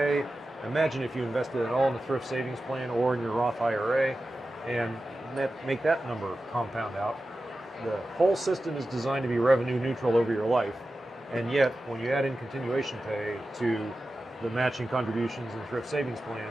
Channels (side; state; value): both; normal; correlation 0.93